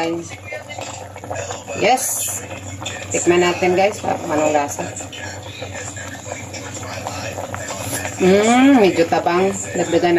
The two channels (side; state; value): both; identical; correlation 1.00